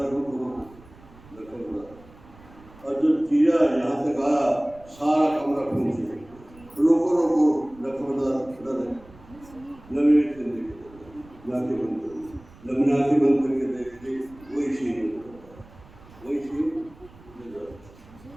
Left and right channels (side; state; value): right; noise; rumble, 23 dB below the sound